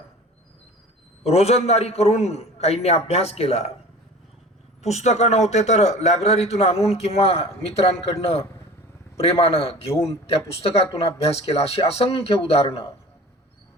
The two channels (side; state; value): both; normal; correlation 0.40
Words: रोजंदारी करून काहींनी अभ्यास केला, पुस्तकं नव्हते तर लायब्ररीतून आणून किंवा मित्रांकडनं प्रेमानं घेऊन त्या पुस्तकातून अभ्यास केला, अशी असंख्य उदाहरणं.